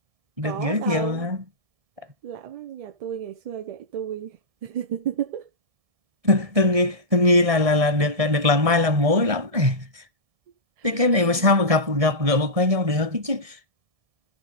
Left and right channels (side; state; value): left; late; 1.7 ms